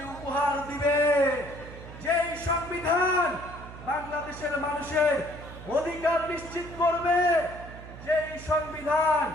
উপহার দিবে, যেই সংবিধান বাংলাদেশের মানুষের অধিকার নিশ্চিত করবে, যেই সংবিধান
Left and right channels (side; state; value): right; noise; hum, 14 dB below the sound